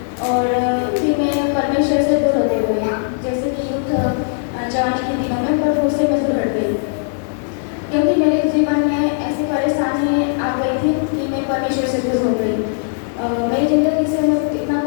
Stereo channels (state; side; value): silent; right; 66 dB below the other